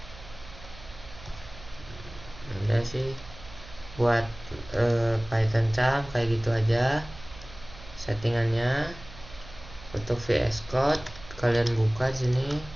Udah sih buat Python charm kayak gitu aja settingannya. Untuk VS Code kalian buka sini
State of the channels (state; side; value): noise; right; hum, 17 dB below the sound